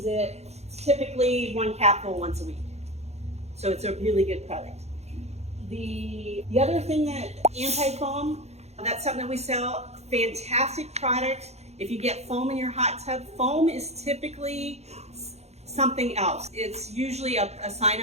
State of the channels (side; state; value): left; late; 0.31 ms